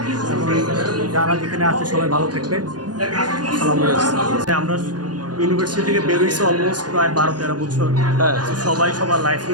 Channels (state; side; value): late; left; 0.69 ms